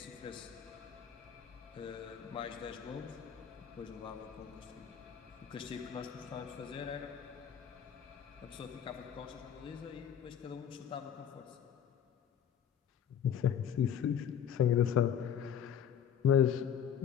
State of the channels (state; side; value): quieter; right; 8.8 dB